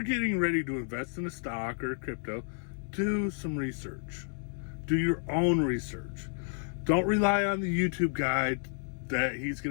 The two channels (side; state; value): right; silent; 57 dB below the other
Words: getting ready to invest in a stock or a crypto, do some research. Do your own research. Don't rely on the YouTube guide that he's